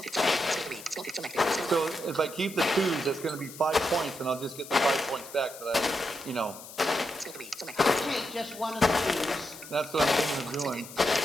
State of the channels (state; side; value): noise; left; hiss, 15 dB below the sound